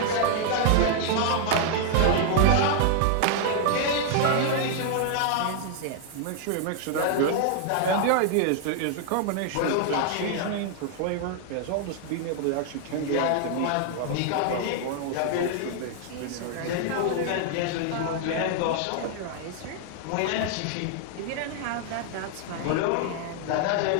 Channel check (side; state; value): both; different; correlation 0.00